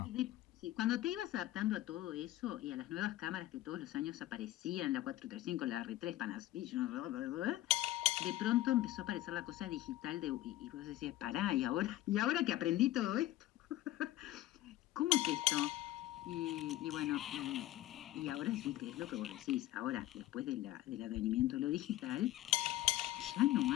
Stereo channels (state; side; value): quieter; right; 15.2 dB